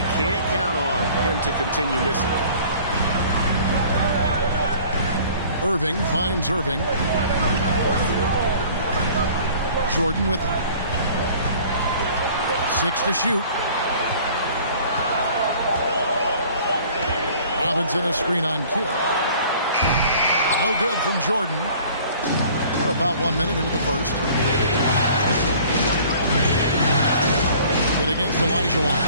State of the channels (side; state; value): both; inverted; correlation -0.50